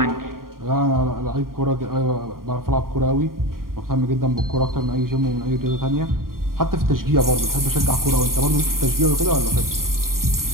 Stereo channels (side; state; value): left; late; 0.92 ms